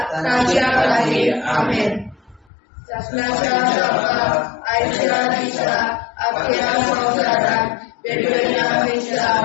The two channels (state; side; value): drops out; right; at 2.5 s